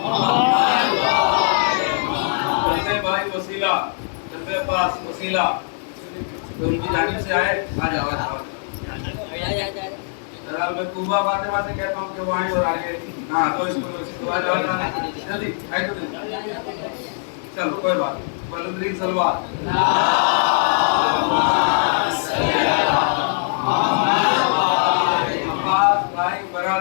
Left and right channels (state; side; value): silent; right; digital silence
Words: भाई वसीला जल्दे पास वसीला तो उनकी जानिब से आए, आ जाओ जरा मैं कुबा फातिमा से कहता हूं कि वो आए और आगे हां तो इसको आ जाओ जल्दी आए तो चलो कोई बात नहीं बुलंद सलवात। अब्बास भाई